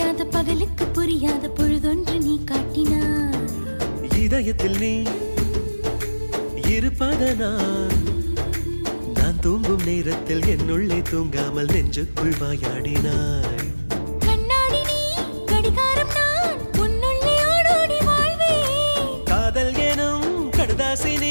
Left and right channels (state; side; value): inverted; both; correlation -1.00